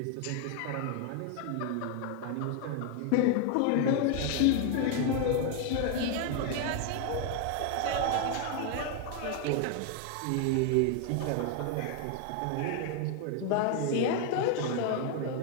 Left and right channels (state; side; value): different; both; correlation 0.01